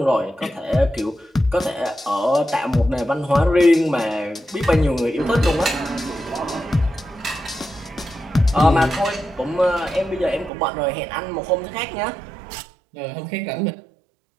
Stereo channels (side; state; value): left; drops out; at 10.5 s